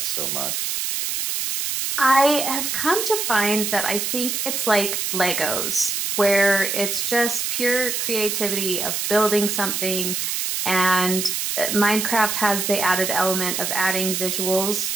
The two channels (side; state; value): right; noise; hiss, 1 dB below the sound